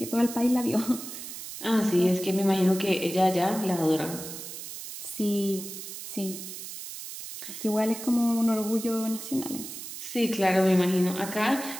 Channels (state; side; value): noise; right; hiss, 10 dB below the sound